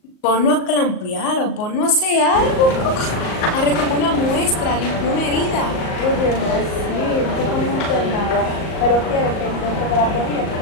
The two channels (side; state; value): right; late; 38 ms